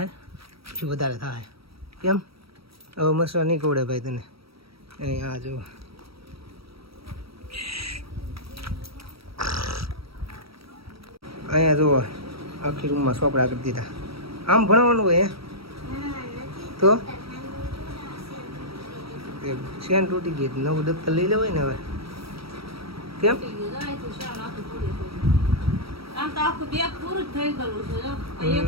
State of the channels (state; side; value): late; left; 0.76 ms